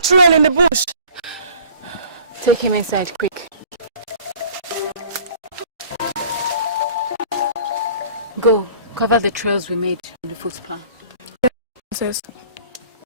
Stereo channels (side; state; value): both; inverted; correlation -0.47